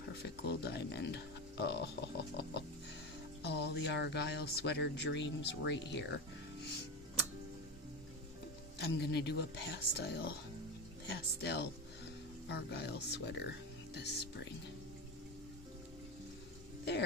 Little Diamond. Oh, all the Argyle sweater dreams right here. I'm gonna do a pastel Argyle sweater this spring.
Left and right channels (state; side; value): normal; both; correlation 0.20